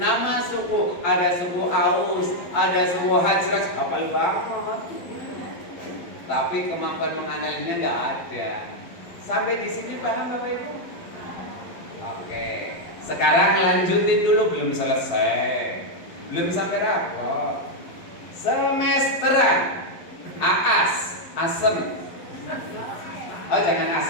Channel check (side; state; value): right; late; 12 ms